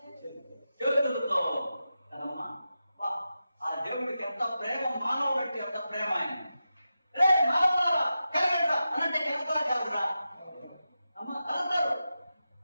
చేతులతో కదమ్మా. ఆ దేవుడికి ఎంత ప్రేమ, మానవుడికి ఎంత ప్రేమ. ఆయన రే మానవులారా కలిగడరా అనంటే కలుగుతా కాదురా అమ్మ కలుగుతారు.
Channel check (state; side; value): inverted; both; correlation -0.91